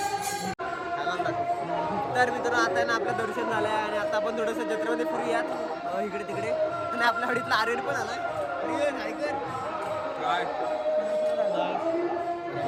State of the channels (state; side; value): identical; both; correlation 1.00